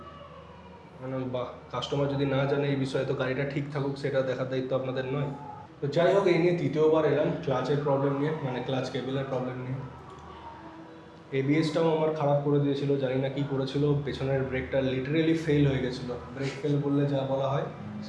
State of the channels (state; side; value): identical; both; correlation 1.00